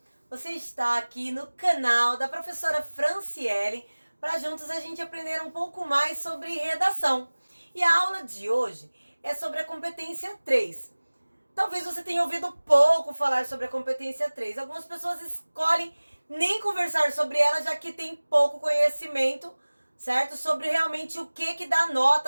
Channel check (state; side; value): inverted; both; correlation -1.00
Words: Você está aqui no canal da professora Franciele para juntos a gente aprender um pouco mais sobre redação. E a aula de hoje é sobre a competência 3. Talvez você tenha ouvido pouco falar sobre a competência 3. Algumas pessoas escolhem nem conversar sobre ela, já que tem pouco conhecimento, certo? Sobre realmente o que dá